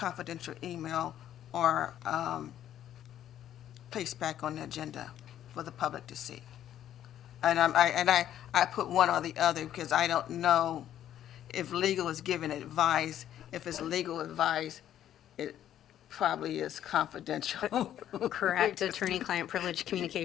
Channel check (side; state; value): right; quieter; 11.2 dB